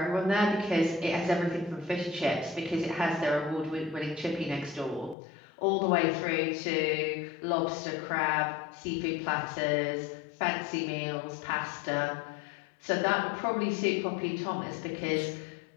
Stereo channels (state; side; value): drops out; right; at 5.2 s